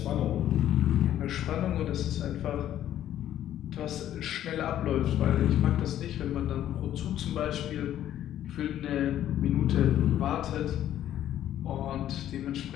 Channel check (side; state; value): right; quieter; 11.7 dB